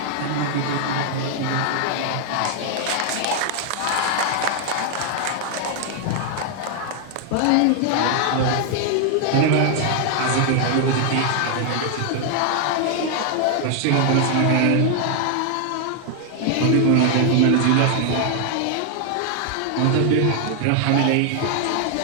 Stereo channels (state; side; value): different; both; correlation 0.00